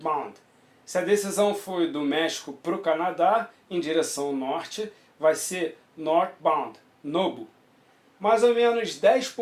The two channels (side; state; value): both; identical; correlation 1.00